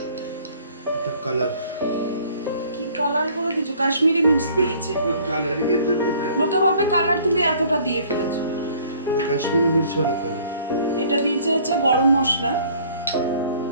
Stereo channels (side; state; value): both; inverted; correlation -0.56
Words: এটা কালার। কি কালার করে দিয়েছো? কাশ্মীরি মির্চ দিয়েছে। কালারিং এর জন্য লোকে ভাবে কালার তুমি এতটা দিয়ে ফেলেছো। কাশ্মীরি মির্চওয়ালা কালার। এটা দিয়েছে হচ্ছে গরম মশলা।